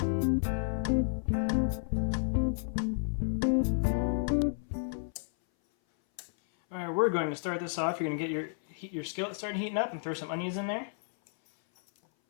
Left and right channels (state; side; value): silent; right; 57 dB below the other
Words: Alright, we're going to start this off. You're going to get your skillet starting heating up and throw some onions in there.